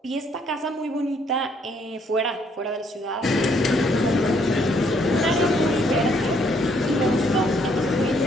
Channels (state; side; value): normal; both; correlation 0.68